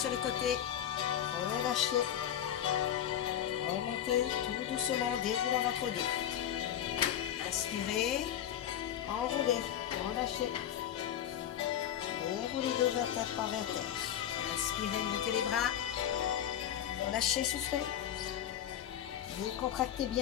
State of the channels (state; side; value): quieter; right; 10.4 dB